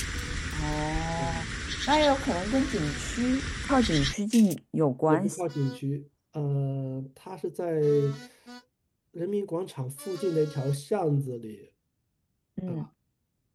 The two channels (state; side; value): identical; both; correlation 1.00